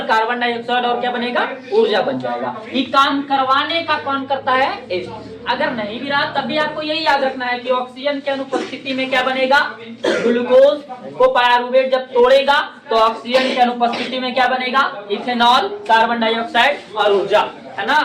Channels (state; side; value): identical; both; correlation 1.00